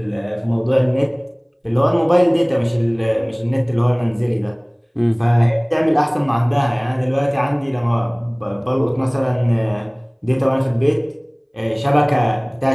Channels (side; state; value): both; identical; correlation 1.00